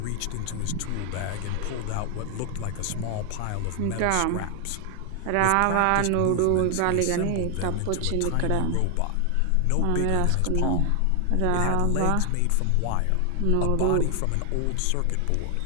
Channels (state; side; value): different; both; correlation 0.00